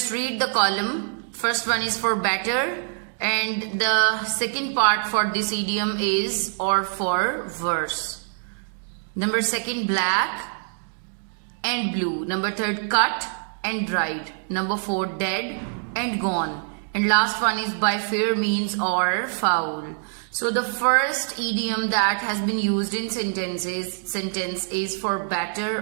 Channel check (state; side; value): silent; left; digital silence